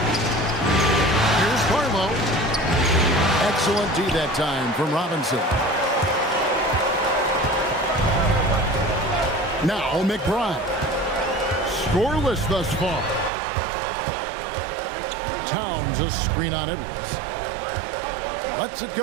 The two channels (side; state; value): left; drops out; at 13.3 s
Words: Here's Barlow. Excellent D that time from Robinson. Now McBride. Scoreless thus far. Towns a screen on Edwards. Lets it